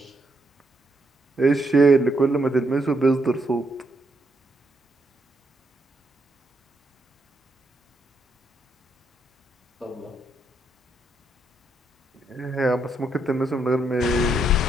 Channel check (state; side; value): normal; both; correlation 0.77